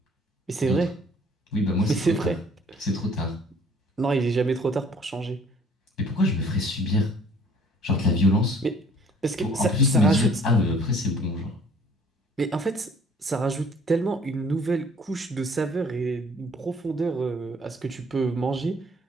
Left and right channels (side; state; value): both; normal; correlation 0.56